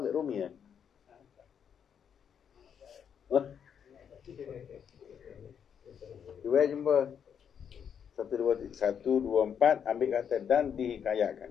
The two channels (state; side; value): quieter; right; 7.8 dB